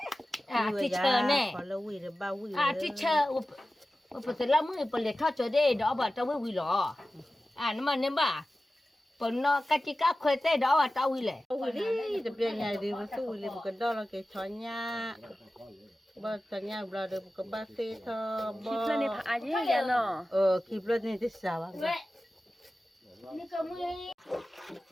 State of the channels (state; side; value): normal; both; correlation 0.95